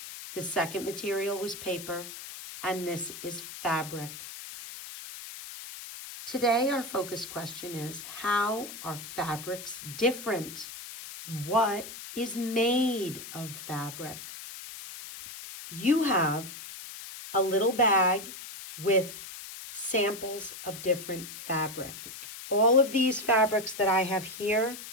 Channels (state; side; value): noise; left; hiss, 12 dB below the sound